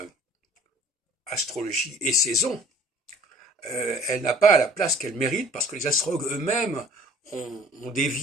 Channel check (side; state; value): both; normal; correlation 0.51